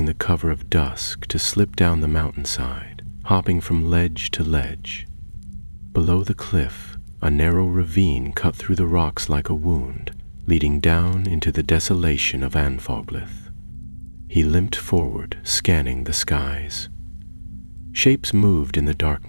the cover of dusk to slip down the mountainside, hopping from ledge to ledge. Below the cliff, a narrow ravine cut through the rocks like a wound, leading down into the desolation of Anfoglith. He limped forward, scanning the skies. Shapes moved in the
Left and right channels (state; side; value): inverted; both; correlation -1.00